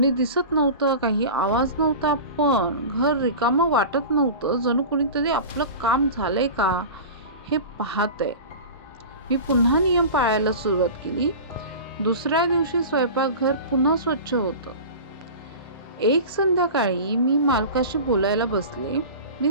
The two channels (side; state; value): both; inverted; correlation -0.33